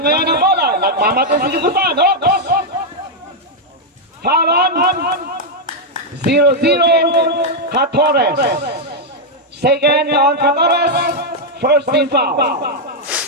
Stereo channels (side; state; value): both; normal; correlation -0.02